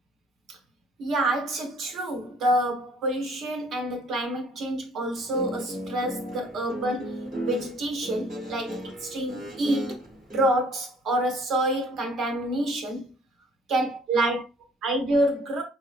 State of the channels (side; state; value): both; normal; correlation 0.57